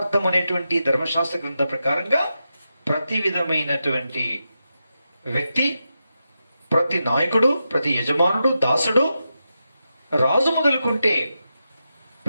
అనేటువంటి ధర్మశాస్త్ర గ్రంథ ప్రకారంగా ప్రతి విధమైనటువంటి వ్యక్తి, ప్రతి నాయకుడు, ప్రతి యజమానుడు, దాసుడు, రాజు మొదలుకుంటే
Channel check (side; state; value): both; inverted; correlation -0.88